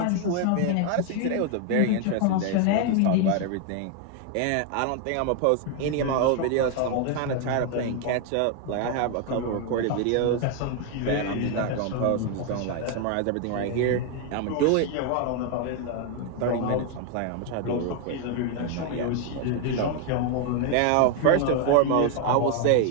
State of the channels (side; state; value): both; different; correlation 0.01